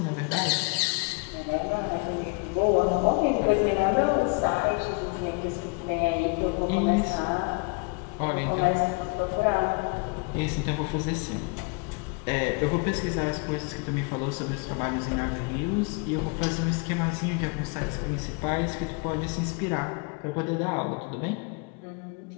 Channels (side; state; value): right; quieter; 32.2 dB